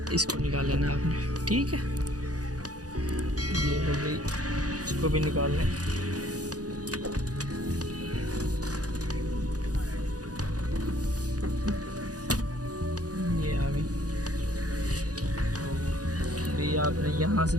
इसको निकाल लेना आपने, ठीक है। ये हो गई, इसको भी निकाल लें। ये आपने यहाँ से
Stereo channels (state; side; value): late; left; 0.67 ms